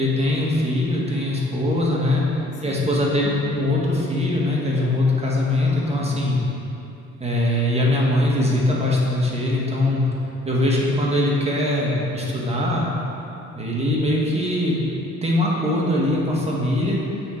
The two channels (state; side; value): normal; both; correlation 0.59